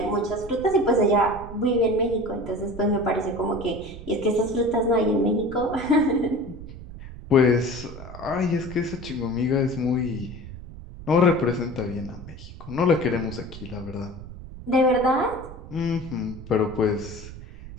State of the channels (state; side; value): noise; right; rumble, 14 dB below the sound